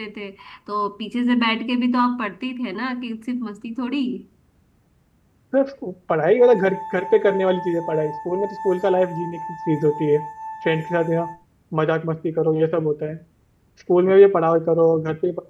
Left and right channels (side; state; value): both; identical; correlation 1.00